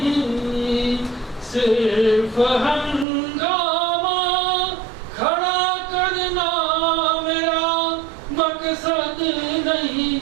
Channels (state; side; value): drops out; left; at 3.1 s